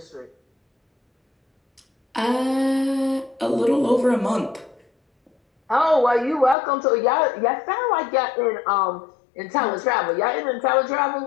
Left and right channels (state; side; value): drops out; right; at 6.6 s